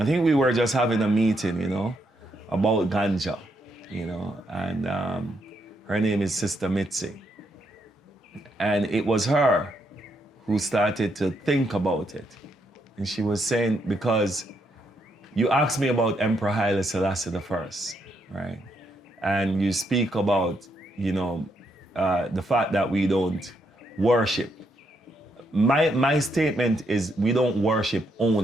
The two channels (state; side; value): normal; both; correlation 0.77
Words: think we were just having a meeting, you know, about ganja, you know, and her name is Sister Mitzi. And it was her who started to think about it. And she was saying, because you asked me about Emperor Haile Selassie I, right? And you speak about, you know, the fact that we don't worship. My statement is we don't worship